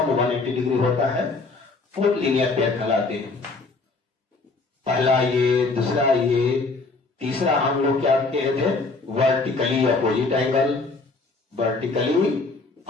180 डिग्री होता है, वो लीनियर पेयर कहलाते हैं। पहला ये, दूसरा ये, तीसरा हम लोग क्या कहे थे, वर्टिकली अपोजिट एंगल।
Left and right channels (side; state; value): right; quieter; 3.8 dB